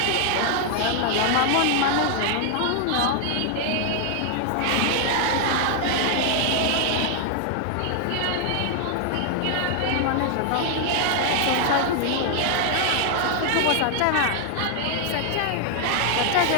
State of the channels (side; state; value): both; different; correlation 0.00